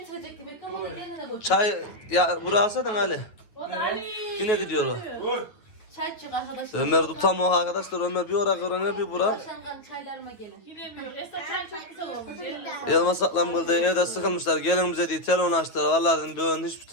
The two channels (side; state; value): right; late; 9.3 ms